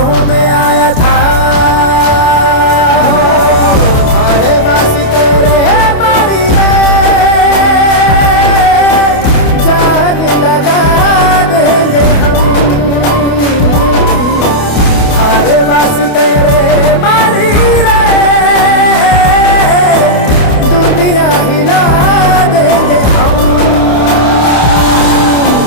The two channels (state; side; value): late; right; 28 ms